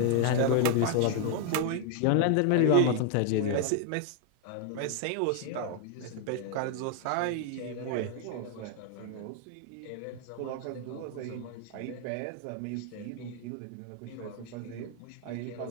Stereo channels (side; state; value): both; different; correlation 0.01